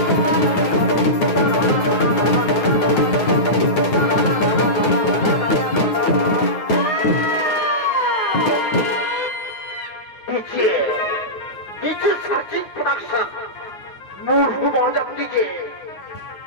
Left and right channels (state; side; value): late; right; 9.7 ms